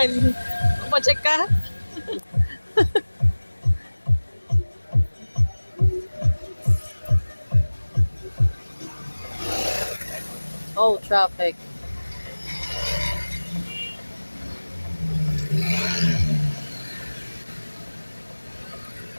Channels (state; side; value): inverted; both; correlation -1.00